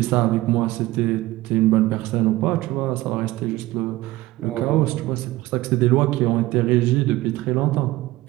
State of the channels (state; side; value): quieter; left; 17.9 dB